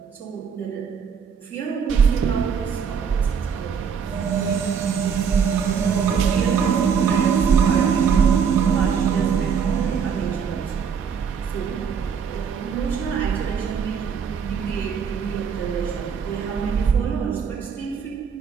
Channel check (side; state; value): left; quieter; 6.8 dB